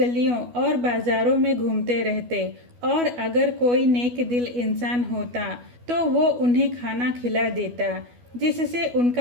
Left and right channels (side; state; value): left; late; 12 ms